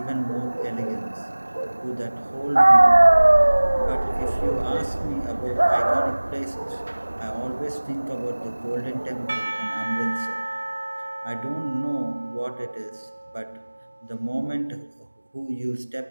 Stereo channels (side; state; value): both; inverted; correlation -1.00